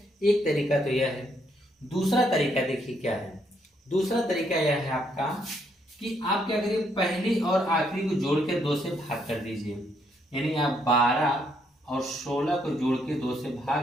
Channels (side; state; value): both; normal; correlation 0.73